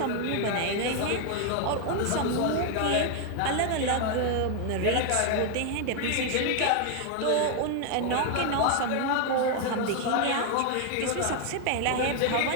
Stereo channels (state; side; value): different; both; correlation 0.01